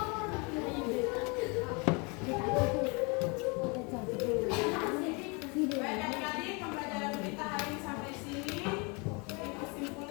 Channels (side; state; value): right; quieter; 30.7 dB